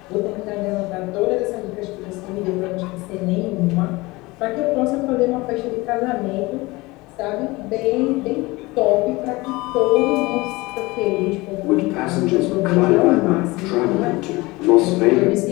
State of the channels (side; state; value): right; quieter; 22.2 dB